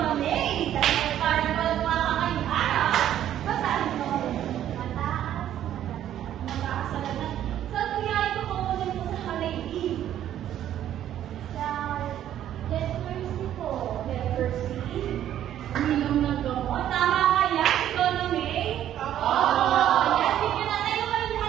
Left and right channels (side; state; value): left; quieter; 11.3 dB